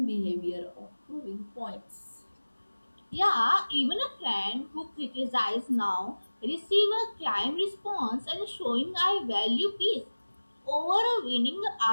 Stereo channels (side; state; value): both; inverted; correlation -1.00